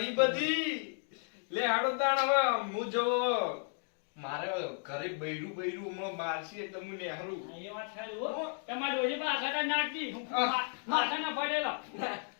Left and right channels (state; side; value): silent; right; 55 dB below the other